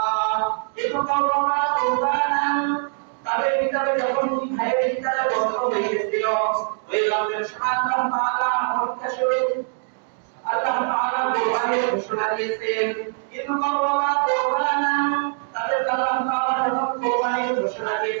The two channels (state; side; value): silent; left; digital silence